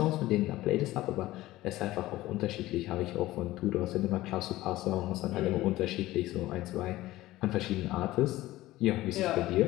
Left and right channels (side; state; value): right; quieter; 16.9 dB